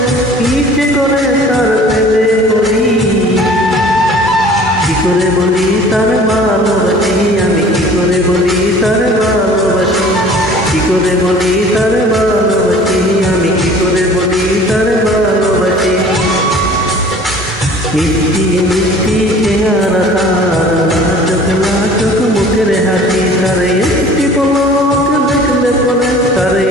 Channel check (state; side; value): normal; both; correlation 0.48